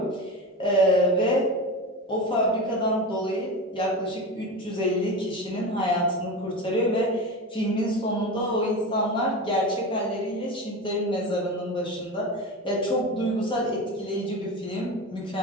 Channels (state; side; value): normal; both; correlation 0.25